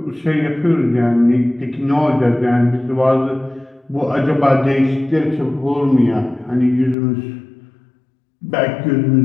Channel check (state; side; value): drops out; right; at 7.0 s